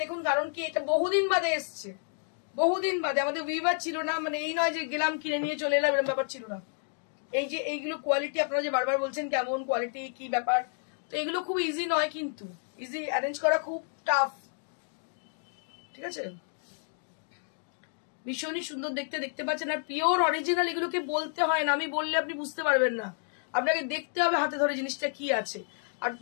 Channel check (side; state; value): right; silent; 58 dB below the other